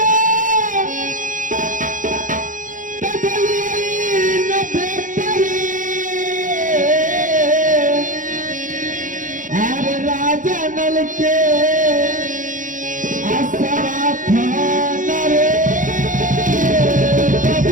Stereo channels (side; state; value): left; late; 0.38 ms